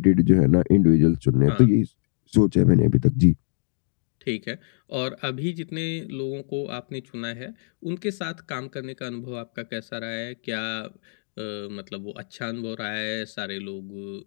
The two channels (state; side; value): silent; right; digital silence